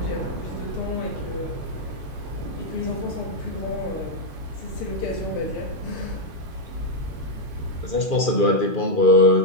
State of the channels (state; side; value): late; right; 2.4 ms